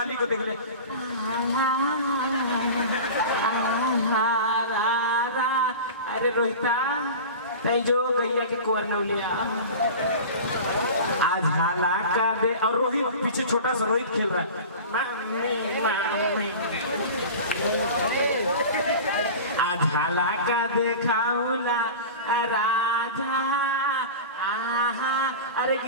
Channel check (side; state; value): both; inverted; correlation -0.33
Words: को देख ले अरे रोहिता तै जो गैया के कोर नौलिया आज हाला का दे। और रोहित पीछे छोटा सा रोहित खेल रहा है आज हाला का देखाउला राजा आहा। अरे